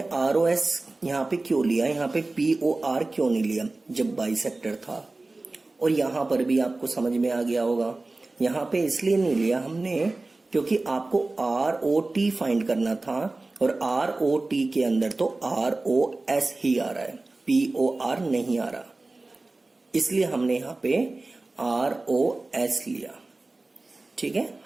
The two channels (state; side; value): quieter; left; 3.2 dB